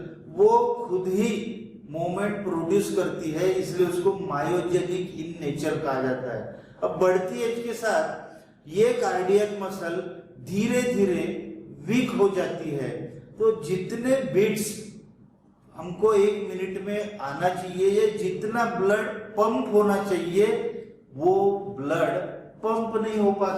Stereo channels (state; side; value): identical; both; correlation 1.00